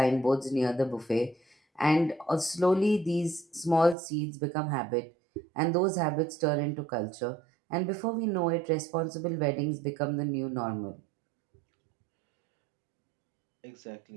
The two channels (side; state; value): left; drops out; at 4.0 s